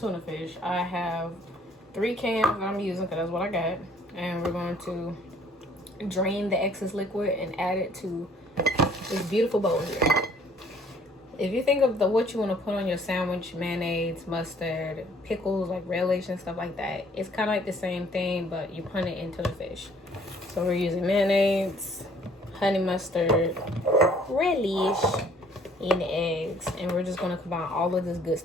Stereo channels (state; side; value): normal; both; correlation 0.59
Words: fish. I have 3 cans that I'm using because that's what I got. And we're going to drain the excess liquid and add it to this beautiful bowl here. If you think of what you want to put on your sandwich, mayonnaise, mustard, pickles, like relish and stuff like that, it's kind of like the same thing, but you put it into the fish. So we're using mayonnaise, honey mustard, relish, and eggs, and we're just going to combine all of this good